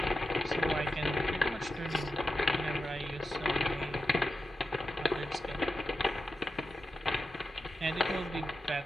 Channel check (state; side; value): normal; both; correlation 0.90